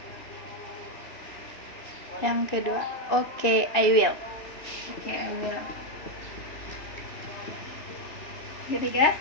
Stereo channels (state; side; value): late; right; 2.6 ms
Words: Yang kedua, okay, I will. Oke, I will. Ketiga?